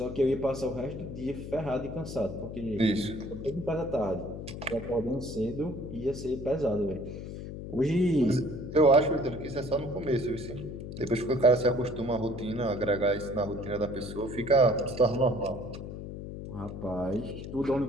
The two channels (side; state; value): left; noise; hum, 9 dB below the sound